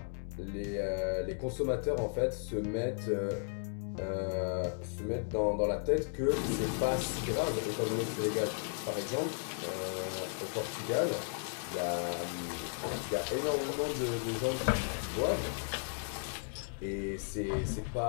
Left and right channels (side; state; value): right; silent; 54 dB below the other